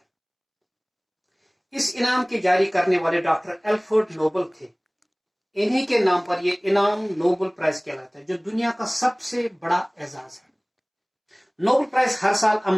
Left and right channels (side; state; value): both; identical; correlation 1.00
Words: اس انعام کے جاری کرنے والے ڈاکٹر الفریڈ نوبل تھے۔ انہی کے نام پر یہ انعام نوبل پرائز کہلاتا ہے، جو دنیا کا سب سے بڑا اعزاز ہے۔ نوبل پرائز ہر سال